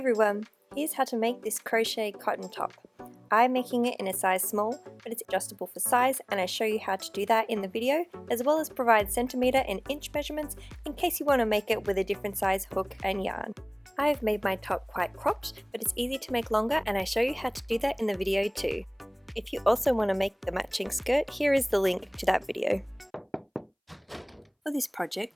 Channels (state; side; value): identical; both; correlation 1.00